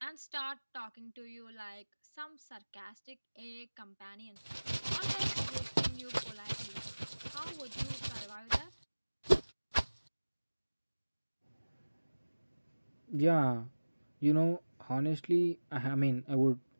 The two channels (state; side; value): inverted; both; correlation -1.00